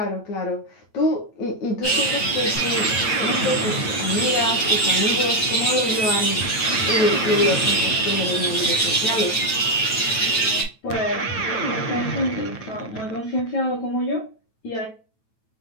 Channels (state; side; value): late; right; 9.0 ms